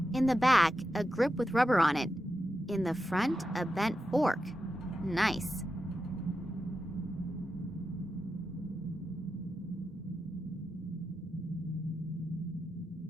In the back, a grip with rubber on it. In the front, a bent fork. Nice.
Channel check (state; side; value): normal; both; correlation 0.89